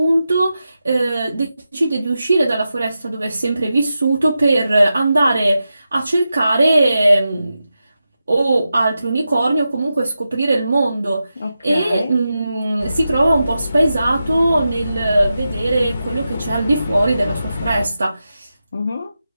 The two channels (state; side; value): inverted; both; correlation -0.91